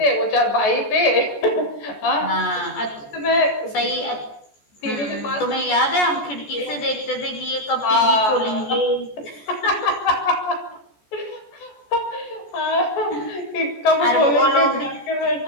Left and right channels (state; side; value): late; right; 14 ms